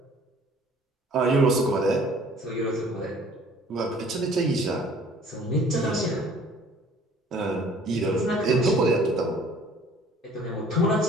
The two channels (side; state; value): both; normal; correlation 0.53